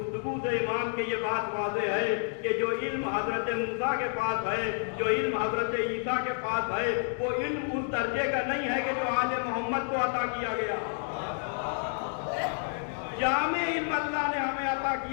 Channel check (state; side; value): silent; right; 58 dB below the other